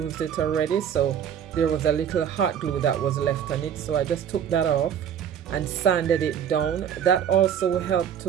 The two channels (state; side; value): quieter; left; 8.7 dB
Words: it already, so there was a little hot glue that was left on it. So I just took that off and sanded it down. That also helped